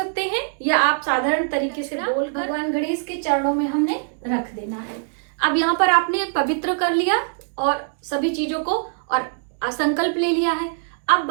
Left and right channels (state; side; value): silent; left; digital silence